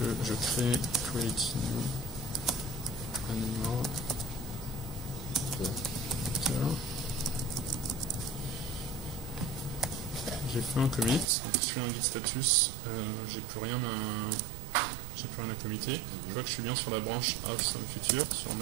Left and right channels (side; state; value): left; drops out; at 11.2 s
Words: je crée create new animal. J'ai fait un commit, donc je fais un git status, j'ai plus rien à committer. Je vois que je suis bien sur la branche Awesome Feature, sur